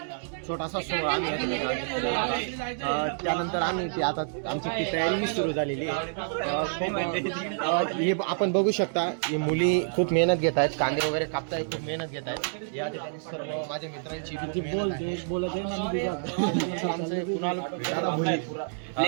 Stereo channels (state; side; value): silent; left; digital silence